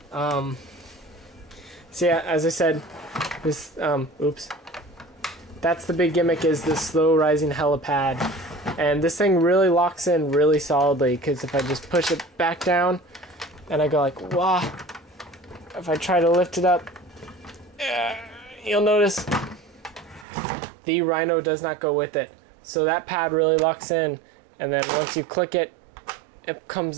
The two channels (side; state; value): left; drops out; at 20.2 s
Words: So yeah, as I said, this, that's the big gimmick, is this slow rising helipad. And this thing really locks in really solidly, because if I just push it back down, and I go like, wah, if I try to lift it up, you'll notice the R.H.I.N.O does not go with it. So that pad really locks in. And then once you click it, it